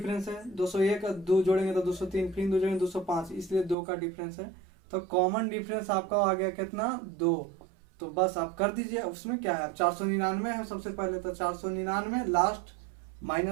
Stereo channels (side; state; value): left; drops out; at 3.8 s